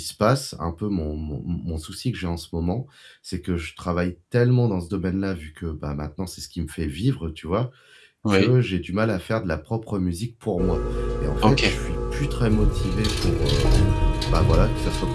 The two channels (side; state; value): both; identical; correlation 1.00